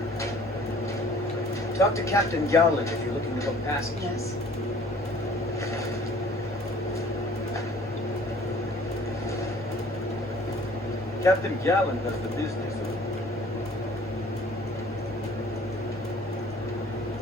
Talk to Captain Garland if you're looking to book passage. Yes. Captain Garland does the business.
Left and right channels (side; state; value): both; normal; correlation 0.52